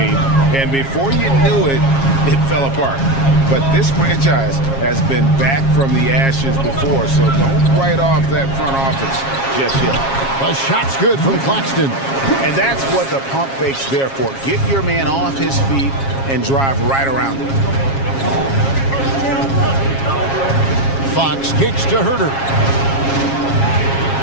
And before you knew it, it fell apart. But this franchise has been back from the ashes before, so don't write off that front office just yet. A shot's good from Claxton. And that's what the pump fake's there for. Get your man off his feet and drive right around him. Fox kicks to Herter.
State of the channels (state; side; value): late; right; 7.4 ms